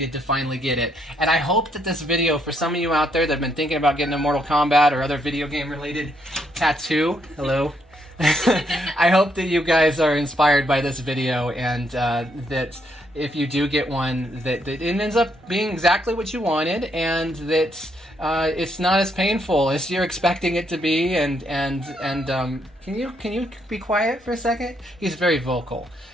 to finally get it. And I hope that this video, for some of you out there that have been thinking about getting a Mortal Kombat or other video game related tattoo, hello, I hope that you guys are inspired by this video, and that if you do get one, that it ends up being exactly what you wanted, and that it's not as painful as you're expecting it to be. And can you be quiet for a second? He's very vocal.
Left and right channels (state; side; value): normal; both; correlation 0.74